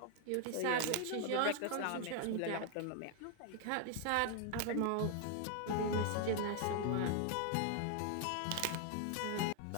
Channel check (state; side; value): different; both; correlation 0.00